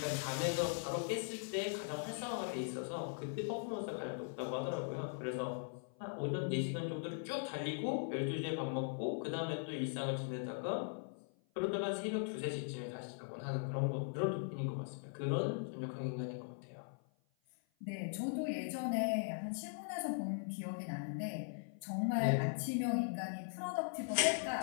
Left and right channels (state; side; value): silent; right; 51 dB below the other